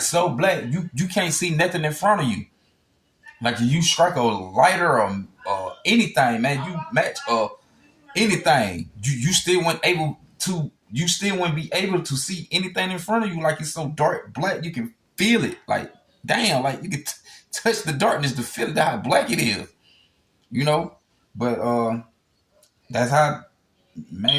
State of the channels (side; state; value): both; identical; correlation 1.00